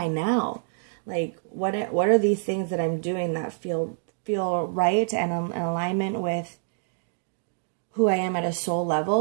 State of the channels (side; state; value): left; silent; digital silence